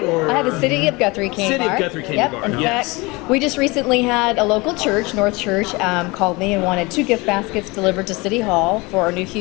I have a City of Guthrie candy bar. City of Guthrie candy bar. In fact, we just recently had a local church, North Church, called me and wanted 2 gift baskets delivered to City Hall for our new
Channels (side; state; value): right; quieter; 24.6 dB